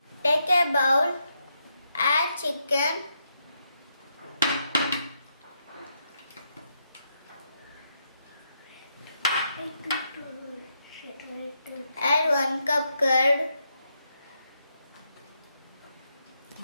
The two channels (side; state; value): both; inverted; correlation -0.80